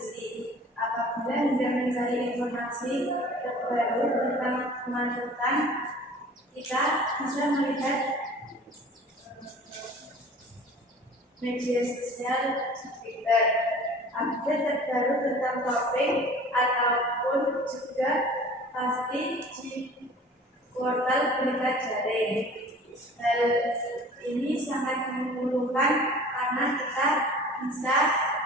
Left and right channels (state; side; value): normal; both; correlation 0.45